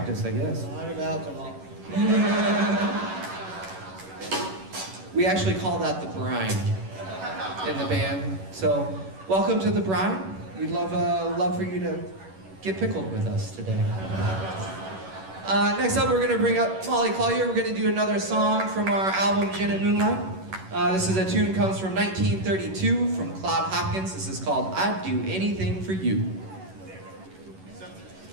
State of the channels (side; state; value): left; late; 11 ms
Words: I guess. A lot of alcohol. We actually call that the brine in the band. So, welcome to the brine. We'd love for you to get pickled with us today. Next up, we're going to bring up Molly Collier. We're going to do another song from our album Gin and Moonlight. This is a tune comes from 1932 from Claude Hopkins. This is called I'd Do Anything for You.